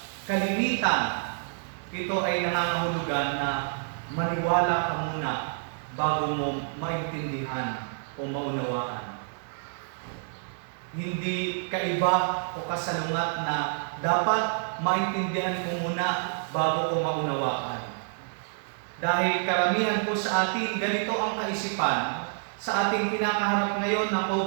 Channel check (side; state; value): left; silent; 59 dB below the other